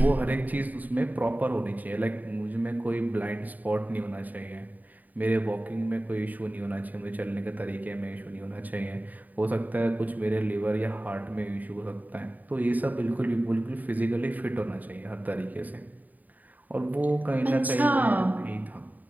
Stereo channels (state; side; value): late; left; 0.081 ms